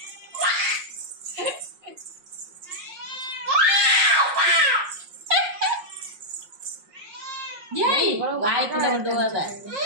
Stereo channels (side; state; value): left; late; 5.6 ms